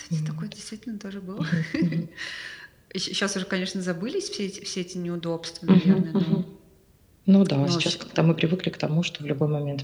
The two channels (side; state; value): both; identical; correlation 1.00